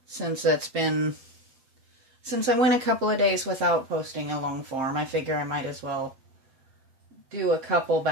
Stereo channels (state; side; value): late; left; 7.7 ms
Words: since I went a couple of days without posting a long form. I figure I might as well do a couple